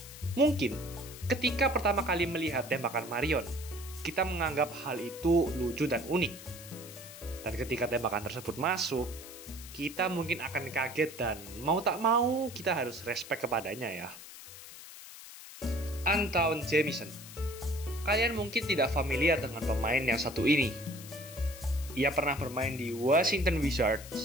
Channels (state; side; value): noise; left; hiss, 15 dB below the sound